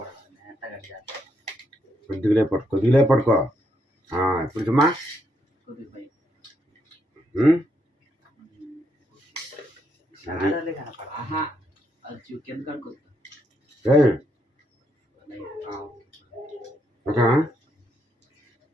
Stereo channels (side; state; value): both; normal; correlation 0.76